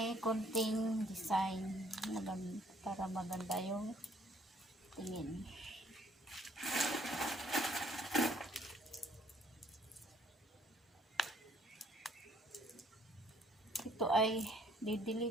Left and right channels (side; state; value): both; normal; correlation 0.63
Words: konting design para maganda yung tingin. Ito ay